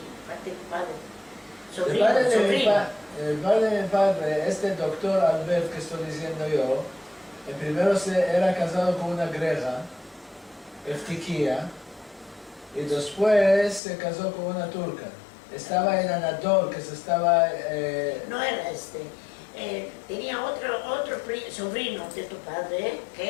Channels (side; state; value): right; drops out; at 13.8 s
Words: parte de tu padre. El padre de mi padre, este doctor Albert que estoy diciendo yo, el primero era casado con una greja, Eftiquía, y después se casó con una turca. Estaba en Anadol, que se estaba... No era este. Tenía otro sobrino de tu padre,